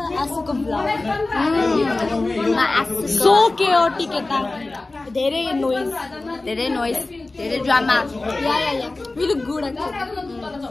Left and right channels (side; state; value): right; quieter; 3.2 dB